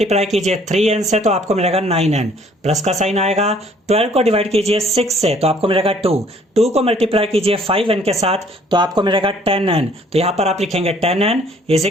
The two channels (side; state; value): both; normal; correlation 0.59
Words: कीजिए 3n से तो आपको मिलेगा 9n। प्लस का साइन आएगा। 12 को डिवाइड कीजिए 6 से तो आपको मिलेगा 2। 2 को मल्टीप्लाई कीजिए 5n के साथ तो आपको मिलेगा 10n। तो यहाँ पर आप लिखेंगे 10n is